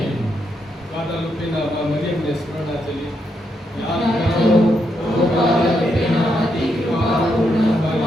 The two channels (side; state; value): both; normal; correlation 0.80